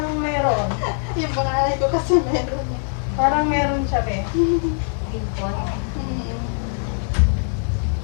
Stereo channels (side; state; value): right; silent; 61 dB below the other